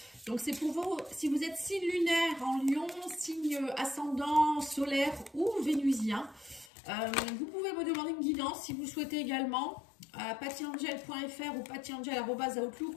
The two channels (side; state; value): right; drops out; at 6.7 s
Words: Donc c'est pour vous, si vous êtes signe lunaire en lion, signe ascendant, solaire ou vénusien. Vous pouvez me demander une guidance si vous le souhaitez également à pattyangel.fr ou